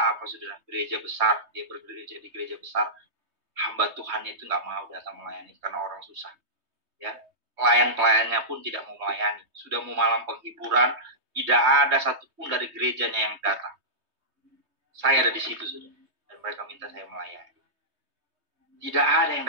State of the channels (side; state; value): left; late; 3.2 ms